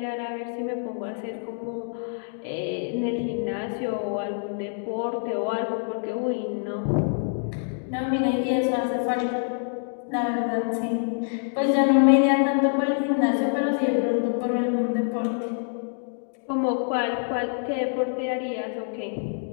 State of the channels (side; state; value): right; silent; digital silence